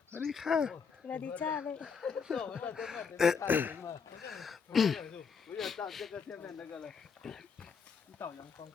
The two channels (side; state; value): right; quieter; 5.9 dB